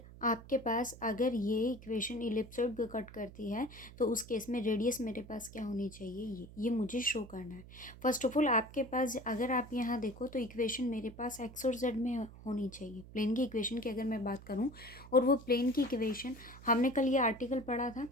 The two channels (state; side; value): noise; right; hum, 17 dB below the sound